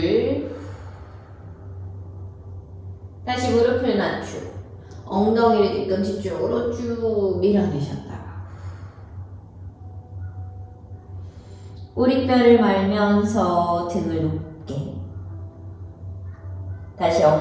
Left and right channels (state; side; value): identical; both; correlation 1.00